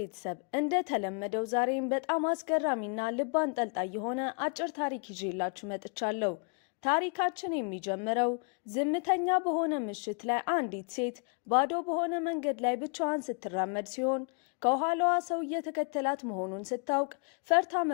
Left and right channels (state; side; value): quieter; right; 37.3 dB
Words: እንደተለመደው ዛሬም በጣም አስገራሚና ልብ አንጠልጣይ የሆነ አጭር ታሪክ ይዤላችሁ መጥቻለሁ። ታሪካችን የሚጀምረው ዝምተኛ በሆነ ምሽት ላይ አንዲት ሴት ባዶ በሆነ መንገድ ላይ ብቻዋን ስትራመድ ሲሆን ከኋላዋ ሰው እየተከተላት መሆኑን ስታውቅ ፈርታ